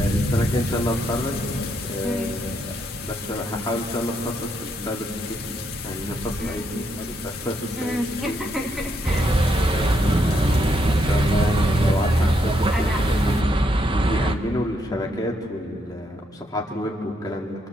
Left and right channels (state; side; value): normal; both; correlation 0.76